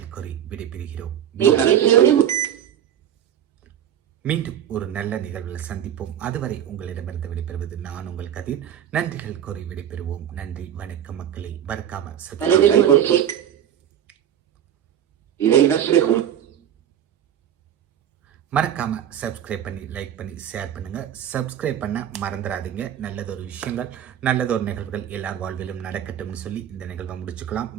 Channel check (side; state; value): left; quieter; 10.2 dB